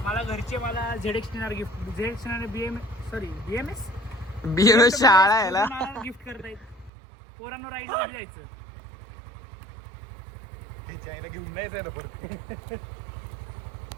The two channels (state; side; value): drops out; left; at 6.9 s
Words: मला घरचे मला ZX गिफ्ट BMS शाळा आहे ना. गिफ्ट करतायत. पोरांनो राईडला कधी जायचं? घेऊन नाही जायला परत.